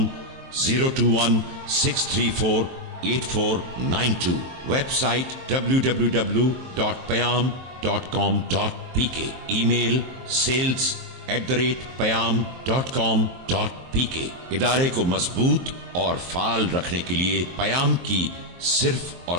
021-634-8492। Website www.payam.com.pk। Email sales@payam.com.pk। इदारे को मजबूत और फाल रखने के लिए पयाम की सिर्फ और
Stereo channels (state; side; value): late; left; 23 ms